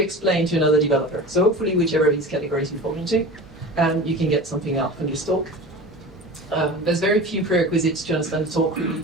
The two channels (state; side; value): normal; both; correlation 0.34